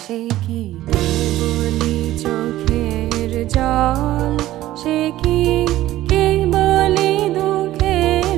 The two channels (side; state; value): left; quieter; 15.0 dB